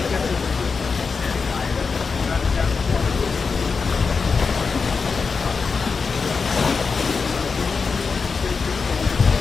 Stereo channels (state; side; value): quieter; right; 5.0 dB